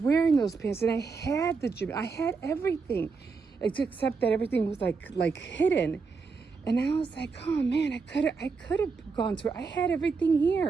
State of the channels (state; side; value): quieter; left; 4.8 dB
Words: wearing those pants, and I had the gym. I had everything, except that everything was like hidden. And I was like, oh man, I could have gone to it. I had everything